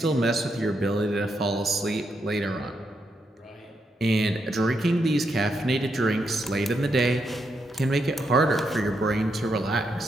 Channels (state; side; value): normal; both; correlation 0.81